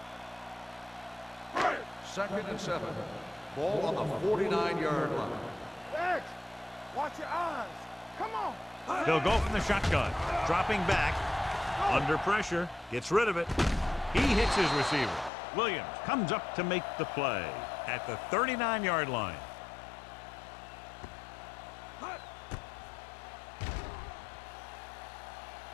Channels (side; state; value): right; drops out; at 15.3 s